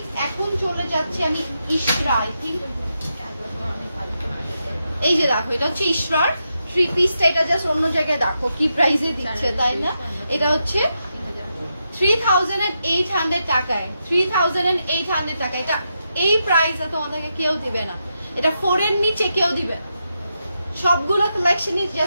এখন চলে যাচ্ছে আমি ইশরা, আই থিংক এই যে দেখো এটা হচ্ছে ইশরার থ্রি পিসটা, এটা জাস্ট অন্য জায়গায় দেখো কি প্রাইসে দিচ্ছে, তাই না? এটা হচ্ছে 3800 টাকায়, 3800 টাকা, এটা এই প্রাইসে তোমাদেরকে কেউ দিবে না, এটা 4 এর নিচে কেউ দিবে না। সবগুলো কালেকশনই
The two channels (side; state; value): both; inverted; correlation -0.85